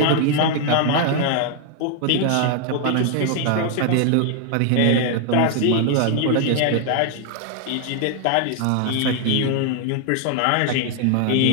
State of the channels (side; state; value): both; different; correlation 0.00